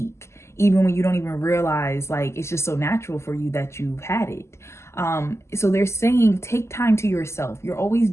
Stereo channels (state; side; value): late; right; 0.13 ms